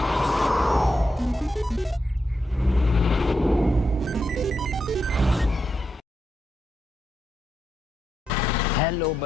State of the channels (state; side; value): normal; both; correlation 0.84